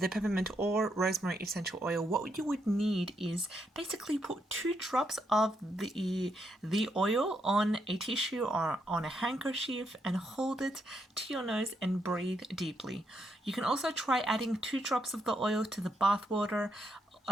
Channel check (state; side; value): normal; both; correlation 0.78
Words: peppermint or rosemary essential oil, what you would need is basically put 2 drops of the oil on a tissue or on a handkerchief and hold it to your nose and breathe deeply. You can also try adding 2 drops of the oil to the bath water.